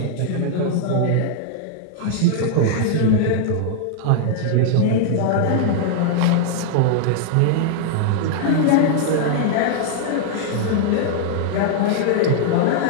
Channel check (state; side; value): different; both; correlation -0.01